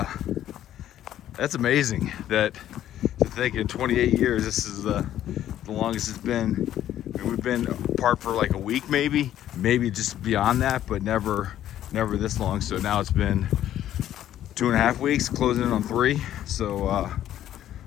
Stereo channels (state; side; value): quieter; right; 11.9 dB